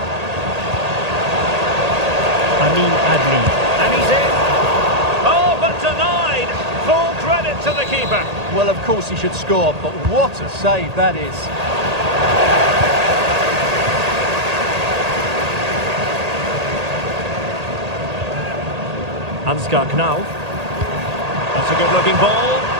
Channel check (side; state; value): left; late; 1.8 ms